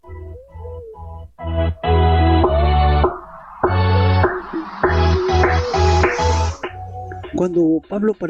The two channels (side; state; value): both; identical; correlation 1.00